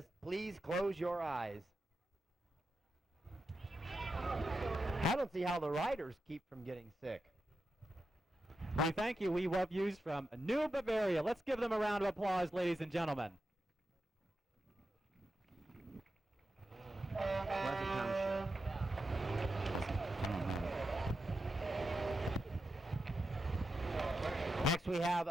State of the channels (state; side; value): normal; both; correlation 0.88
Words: please close your eyes. I don't see how the riders keep from getting sick. We thank you, We Love Yous from New Bavaria. Let's give them a round of applause, ladies and gentlemen. Pleasant Township. Next we have